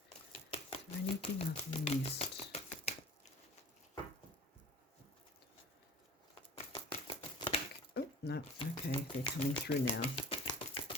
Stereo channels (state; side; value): normal; both; correlation 0.43